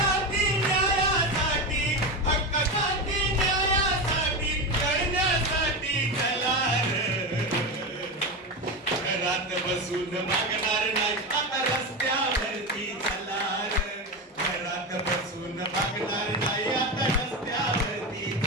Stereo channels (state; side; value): normal; both; correlation 0.18